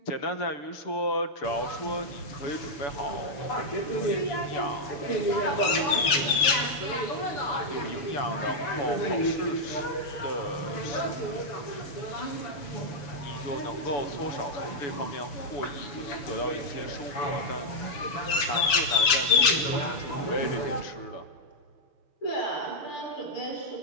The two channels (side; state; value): right; late; 7.0 ms